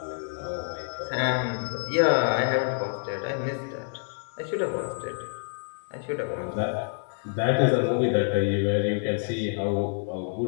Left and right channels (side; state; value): right; silent; 60 dB below the other